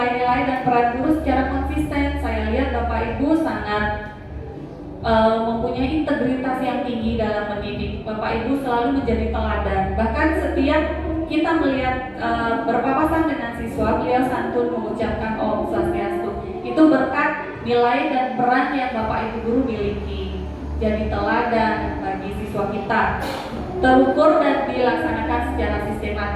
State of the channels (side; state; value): both; identical; correlation 1.00